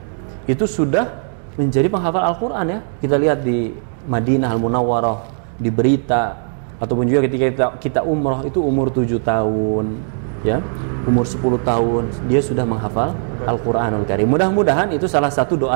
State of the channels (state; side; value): silent; left; digital silence